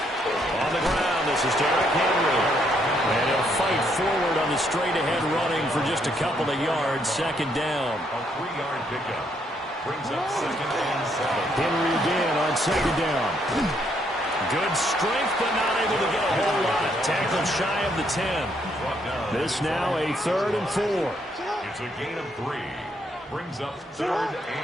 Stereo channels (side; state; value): both; normal; correlation 0.72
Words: On the ground, this is Derrick Henry. And he'll fight forward on the straight-ahead running for just a couple of yards. 2nd down. A 3-yard pickup brings up 2nd and 7. Henry again on 2nd down. Good strength, but not able to get a whole lot. Tackled shy of the 10. This now a 3rd and 4. It's a gain of 3. Brings up 3rd